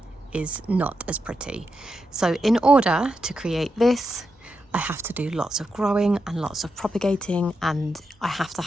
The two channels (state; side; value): normal; both; correlation 0.86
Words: is not as pretty. So in order to create this, I have to do lots of growing and lots of propagating, and I have to